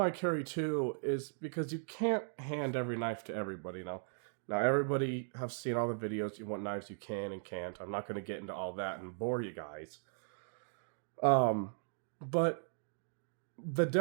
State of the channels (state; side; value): silent; left; digital silence